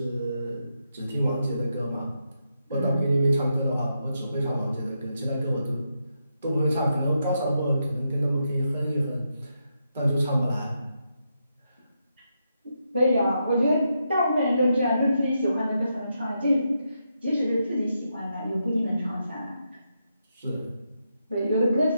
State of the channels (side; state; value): both; inverted; correlation -0.83